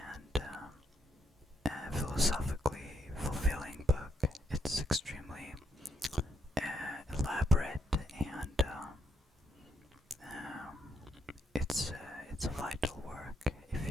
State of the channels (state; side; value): normal; both; correlation 0.76